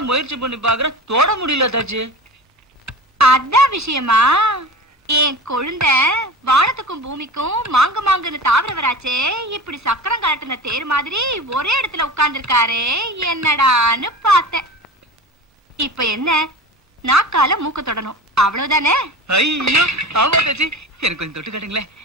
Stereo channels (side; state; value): both; normal; correlation 0.33